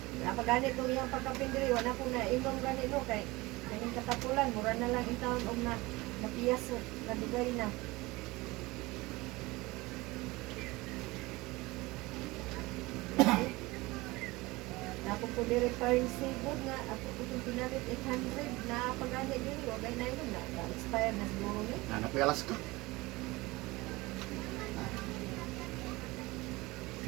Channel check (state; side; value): quieter; left; 21.6 dB